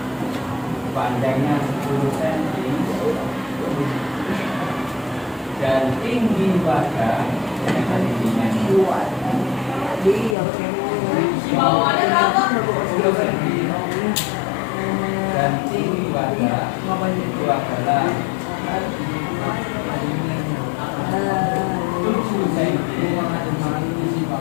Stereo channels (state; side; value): drops out; right; at 10.4 s